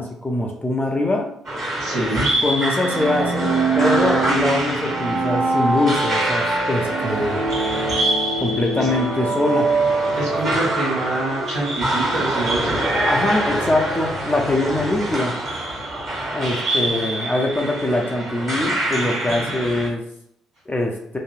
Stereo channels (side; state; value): both; normal; correlation 0.74